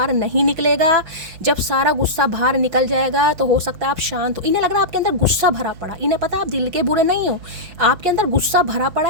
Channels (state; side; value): late; left; 6.0 ms